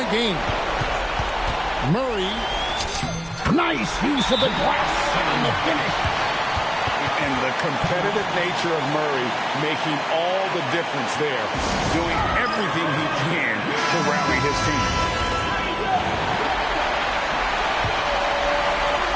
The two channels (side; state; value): both; identical; correlation 1.00